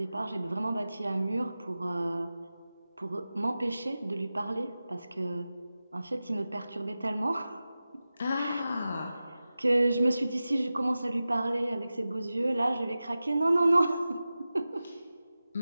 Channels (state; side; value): inverted; both; correlation -0.95